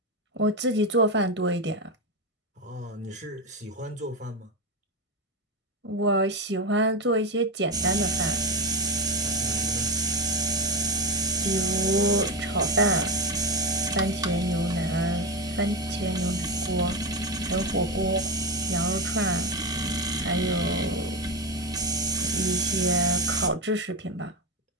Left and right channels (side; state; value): both; normal; correlation 0.14